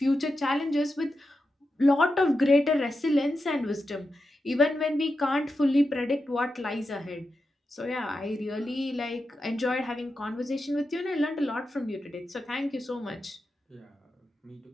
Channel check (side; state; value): both; normal; correlation 0.89